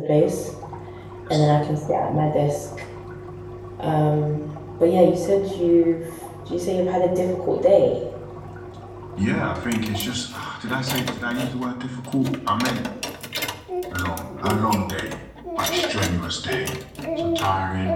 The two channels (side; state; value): both; identical; correlation 1.00